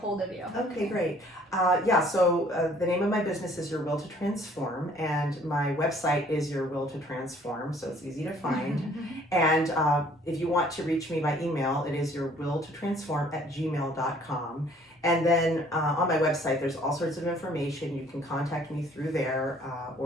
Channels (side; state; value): both; normal; correlation 0.58